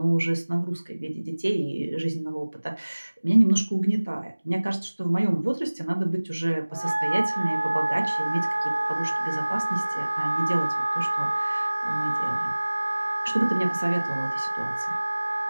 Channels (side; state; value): both; inverted; correlation -1.00